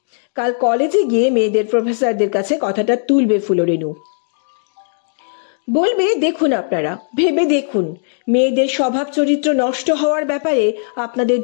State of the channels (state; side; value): silent; right; digital silence